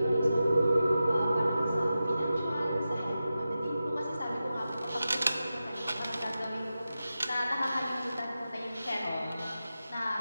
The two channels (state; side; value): inverted; both; correlation -0.92